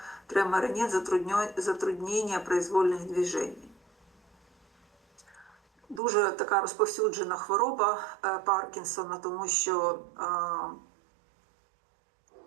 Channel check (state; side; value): drops out; left; at 6.0 s